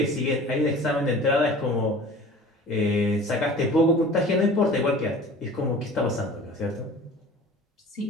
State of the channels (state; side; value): normal; both; correlation 0.43